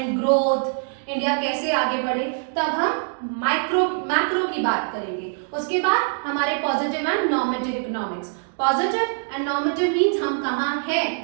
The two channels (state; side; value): silent; left; digital silence